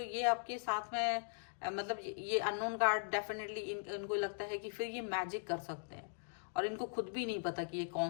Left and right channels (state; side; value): silent; right; digital silence